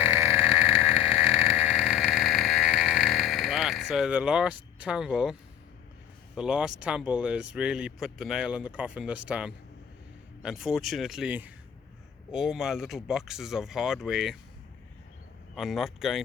so the last tumble has really put the nail in the coffin this time. Unfortunately, all my little boxes of hardware are not going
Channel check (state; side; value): quieter; right; 9.9 dB